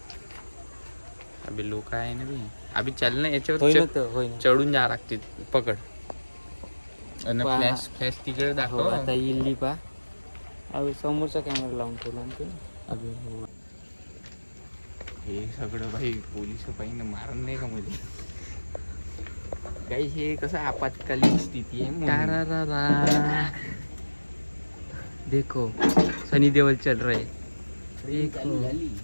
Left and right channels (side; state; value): both; inverted; correlation -1.00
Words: अबे लोक आहे ना बी. अभि चाल ना याच्यावर चढून जा लागते. पकड फ्लॅश फ्लॅश तिकडे दाखव. आता इल्ली पा. अबे समोरचा कॅमेरा लावून ठेवला. अबे हो, हे सगळं भाई पोलिस पाहिजे मारण नाही का मध्ये? काही हे कसं आपत्कालीन स्थिती आहे. देखो सनी देओल चल रहे.